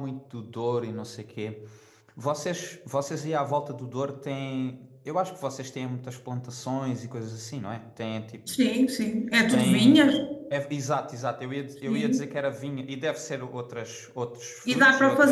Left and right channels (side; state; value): both; identical; correlation 1.00